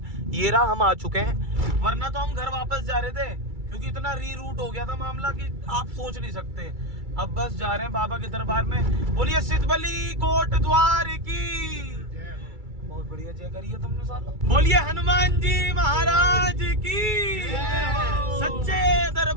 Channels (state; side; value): late; left; 2.3 ms